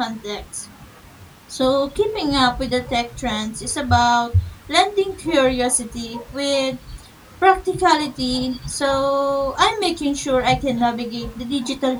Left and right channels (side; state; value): both; identical; correlation 1.00